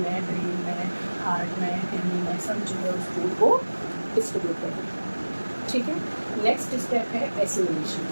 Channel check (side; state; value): both; inverted; correlation -1.00